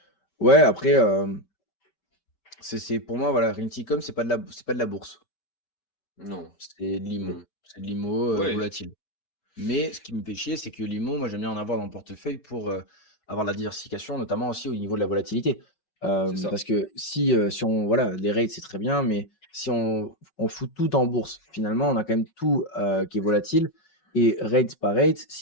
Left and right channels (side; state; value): right; late; 5.4 ms